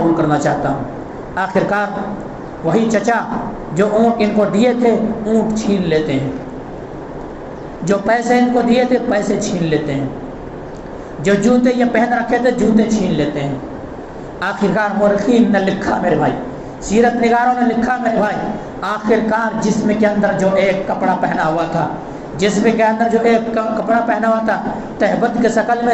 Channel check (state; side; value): identical; both; correlation 1.00